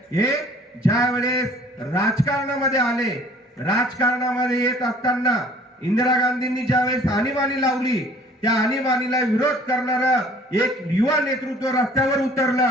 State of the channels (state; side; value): normal; both; correlation 0.53